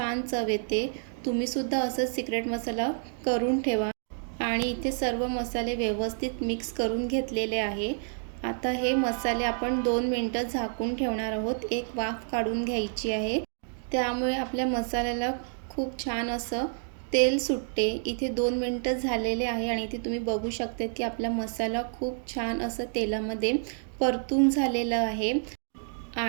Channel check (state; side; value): silent; left; 59 dB below the other